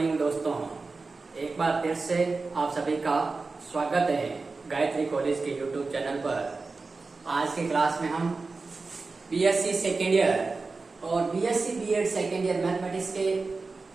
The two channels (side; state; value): left; quieter; 4.0 dB